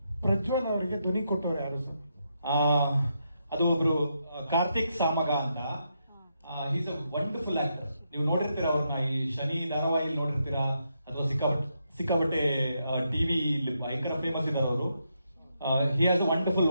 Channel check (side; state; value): both; inverted; correlation -0.81